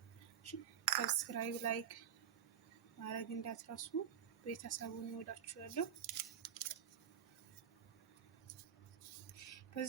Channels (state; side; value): quieter; left; 9.0 dB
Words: ሰብስክራይብ፣ ላይክ ማድረግ እንዳትረሱ። ቤተሰቡን እወዳችኋለሁ።